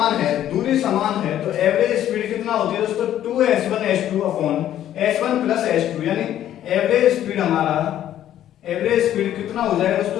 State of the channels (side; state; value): right; quieter; 11.7 dB